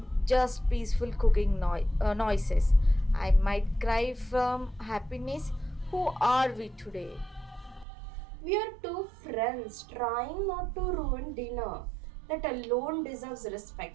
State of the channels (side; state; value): left; drops out; at 7.9 s